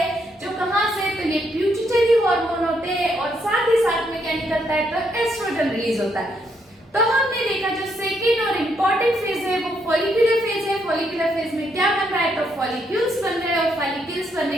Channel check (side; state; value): both; normal; correlation 0.75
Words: जो कहां से? तो ये प्यूटिटरी हार्मोन होते हैं। और साथ ही साथ में क्या निकलता है? तो एस्ट्रोजन रिलीज होता है। तो हमने देखा जो सेकेंड और इम्पोर्टेंट फेज है वो फॉलिकुलर फेज है। फॉलिकुलर फेज में क्या बन रहा है? तो फॉलिक्यूल्स बन रहे हैं। और फॉलिक्यूल्स बनने